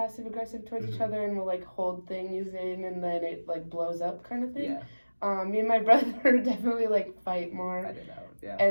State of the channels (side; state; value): both; inverted; correlation -1.00